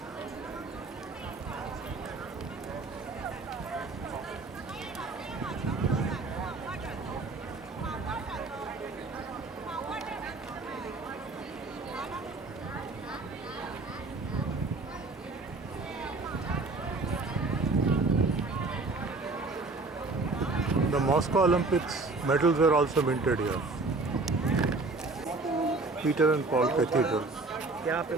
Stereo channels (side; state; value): left; quieter; 3.5 dB